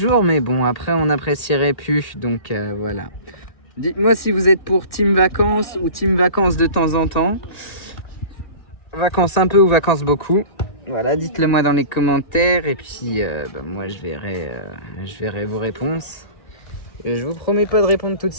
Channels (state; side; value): late; right; 1.8 ms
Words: mais bon, après, on n'apprécierait plus. Donc, voilà. Dites-moi si vous êtes pour team vacances ou team vacances de temps en temps. Vacances un peu ou vacances beaucoup. Voilà, dites-le moi dans les commentaires et puis moi je verrai vos réponses. Et je vous promets pas de répondre tout de